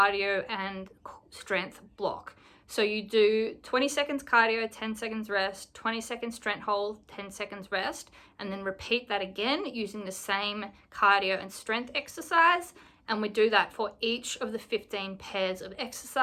and strength block. So you do 20 seconds cardio, 10 seconds rest, 20 seconds strength hold, 10 seconds rest, and then repeat that again using the same cardio and strength exercise. And we do that for each of the 15 pairs of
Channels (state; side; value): identical; both; correlation 1.00